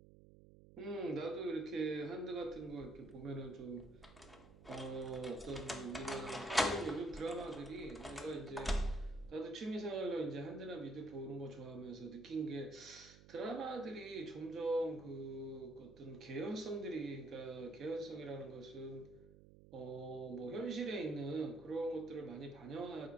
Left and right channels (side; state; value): right; noise; hum, 19 dB below the sound